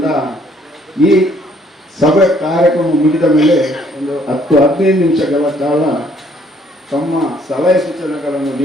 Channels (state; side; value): normal; both; correlation 0.64